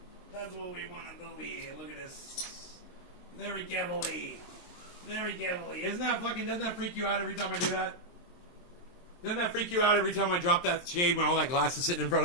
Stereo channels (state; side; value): late; right; 23 ms